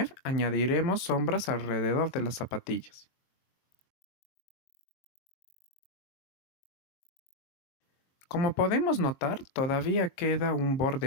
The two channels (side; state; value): right; late; 22 ms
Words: añadiremos sombras alrededor de las zapatillas. Como podemos notar, todavía queda un borde